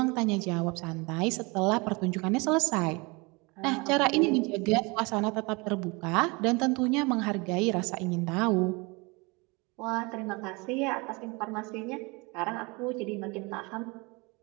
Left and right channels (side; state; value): left; quieter; 27.1 dB